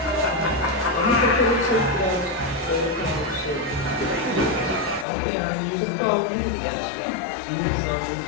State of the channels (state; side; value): drops out; right; at 5.1 s